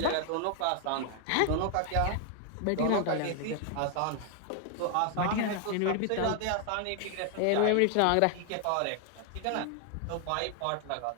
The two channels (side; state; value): both; different; correlation 0.00